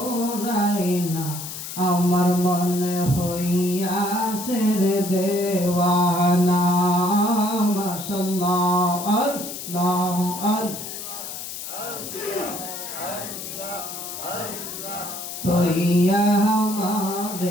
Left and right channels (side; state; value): left; noise; hiss, 8 dB below the sound